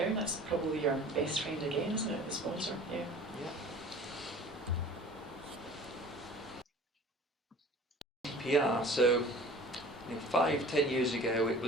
that's probably your best friend again, isn't it, the sponsor? Yeah. GDPR, so 5-10 years ago it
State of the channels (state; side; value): normal; both; correlation 0.44